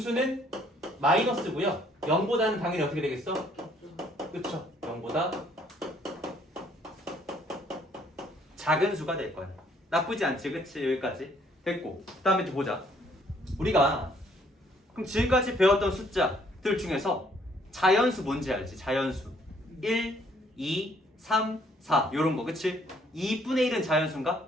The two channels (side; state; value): both; normal; correlation 0.64